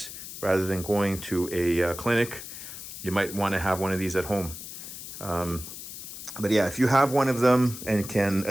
rather than going to a clinic. You might want to have one of these at home. But yeah, if you have one of them and can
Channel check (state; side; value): noise; left; hiss, 11 dB below the sound